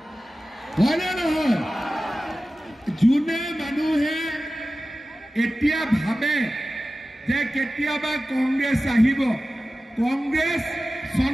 হয়নে নহয় যোনে মানুহে এতিয়া ভাবে যে কেতিয়াবা কংগ্ৰেছ আহিব কংগ্ৰেছ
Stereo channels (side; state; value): both; normal; correlation 0.95